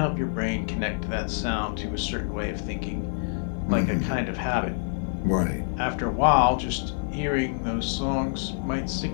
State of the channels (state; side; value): silent; right; 56 dB below the other